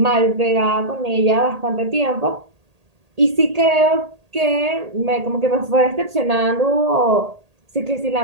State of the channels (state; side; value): late; left; 1.8 ms